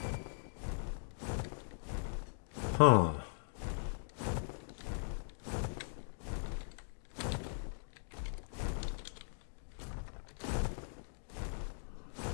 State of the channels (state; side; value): silent; right; digital silence